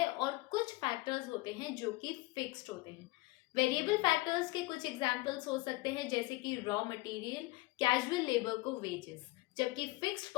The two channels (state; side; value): quieter; right; 21.6 dB